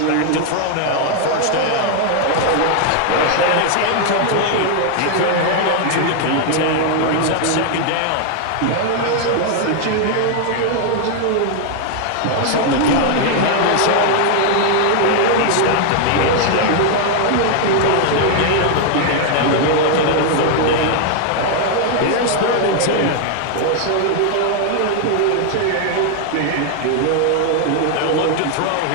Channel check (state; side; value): different; both; correlation 0.00